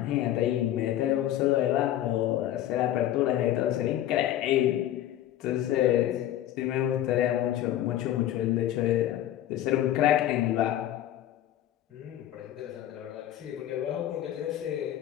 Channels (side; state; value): right; quieter; 12.5 dB